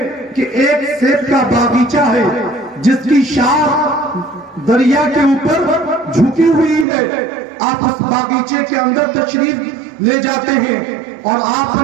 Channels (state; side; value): drops out; left; at 6.9 s